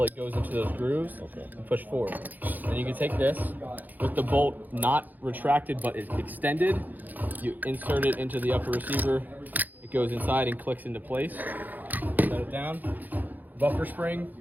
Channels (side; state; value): left; late; 0.084 ms